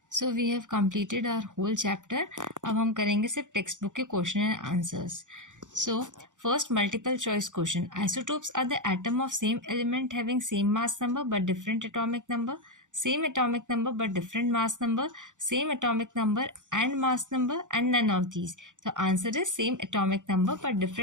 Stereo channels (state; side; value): late; left; 0.86 ms